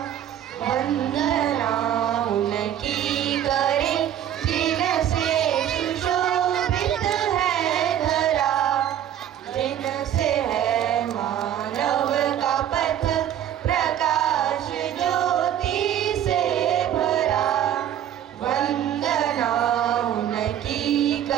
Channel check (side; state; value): left; quieter; 10.6 dB